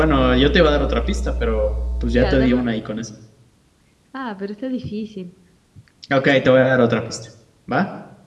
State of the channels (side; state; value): both; identical; correlation 1.00